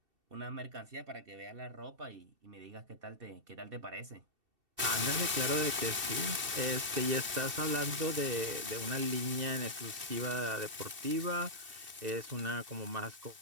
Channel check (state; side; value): late; left; 2.7 ms